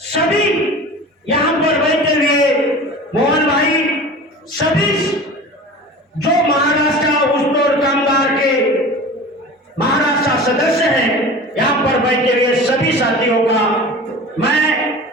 सभी यहाँ पर बैठे हुए मोहन भाई, सभी जो महाराष्ट्र उस्तोड़ कामगार के महाराष्ट्र सदस्य हैं, यहाँ पर बैठे हुए सभी साथियों का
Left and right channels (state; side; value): normal; both; correlation 0.36